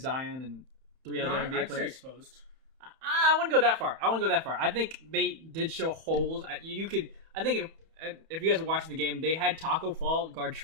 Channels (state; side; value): late; left; 31 ms